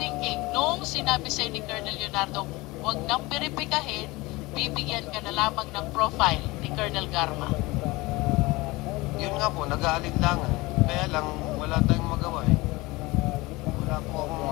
thinking nung sinabi sa'yo ni Colonel Leonardo, huwag nang beripikahin, bibigyan ka na lamang ng profile ni Colonel Garma? Yun nga po, nag-aalinlangan. Kaya lang, wala tayong magawa eh. Wala po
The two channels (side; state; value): right; quieter; 22.1 dB